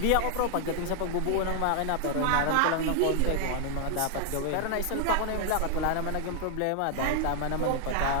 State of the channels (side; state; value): both; different; correlation 0.00